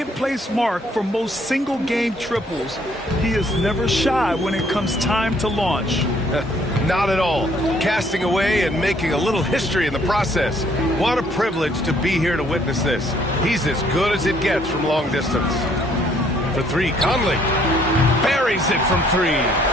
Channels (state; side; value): normal; both; correlation 0.64